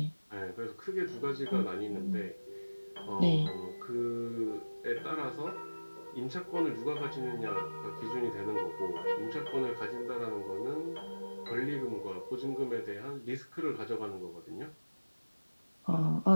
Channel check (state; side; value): inverted; both; correlation -1.00